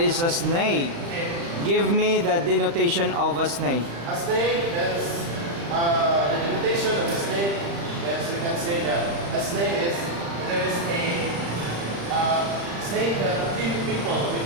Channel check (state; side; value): late; left; 36 ms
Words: a snake? Give me the denotation of a snake. A snake, that's the denotation of a snake. Yes, we can say that a snake is, there is a snake that kills people